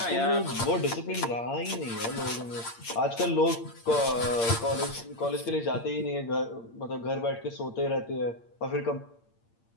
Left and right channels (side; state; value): right; late; 8.7 ms